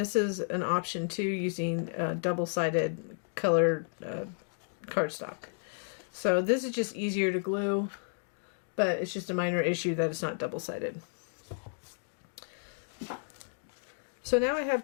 is an option too, using double-sided colored cardstock. So this is just easier to glue, but it's just a minor issue that it's not double-sided. So now I have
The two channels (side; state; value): right; silent; digital silence